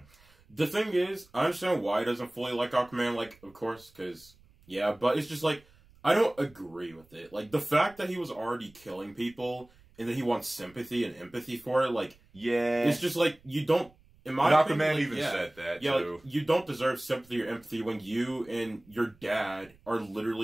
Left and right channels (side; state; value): right; noise; rumble, 28 dB below the sound